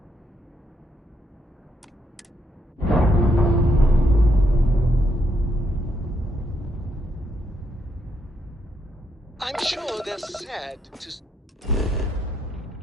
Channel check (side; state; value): both; normal; correlation 0.77